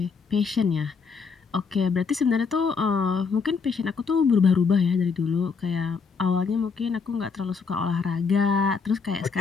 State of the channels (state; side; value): quieter; right; 5.3 dB